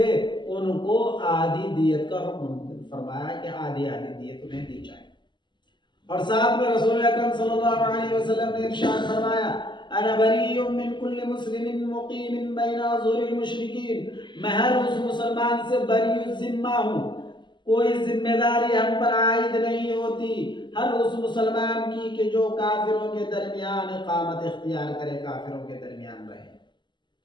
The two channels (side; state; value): right; late; 0.22 ms